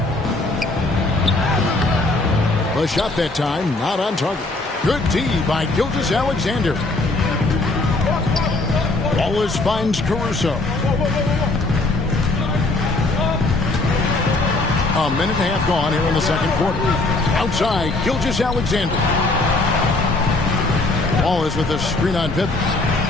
The shot that time, not on target. Good D by Gilgeous-Alexander. Wallace finds Caruso. A minute and a half gone here in the second quarter. Outside, Gilgeous-Alexander. Wallace with a screen on Pippen.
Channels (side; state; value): right; quieter; 3.1 dB